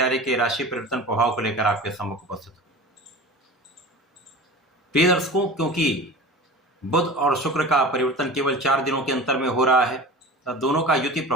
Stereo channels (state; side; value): normal; both; correlation 0.35